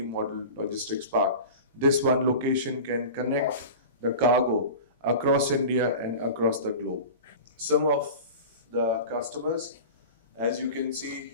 logistics park. This one location can connect the cargo across India and across the globe. Some of the customers, as you can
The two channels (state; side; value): inverted; both; correlation -0.34